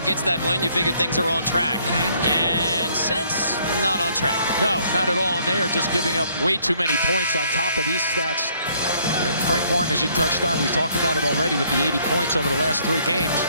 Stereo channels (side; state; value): both; inverted; correlation -0.65